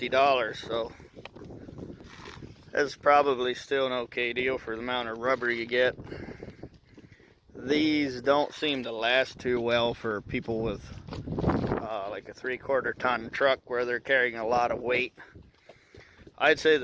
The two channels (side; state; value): both; identical; correlation 1.00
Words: so that's probably still an okay deal for the amount of rubber you get. These don't seem to last too well for people with like a 3/4 ton truck where they're carrying a lot of weight. I'd say